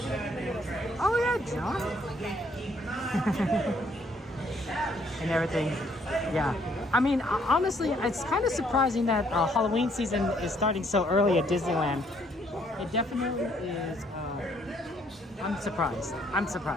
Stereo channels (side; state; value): both; normal; correlation 0.67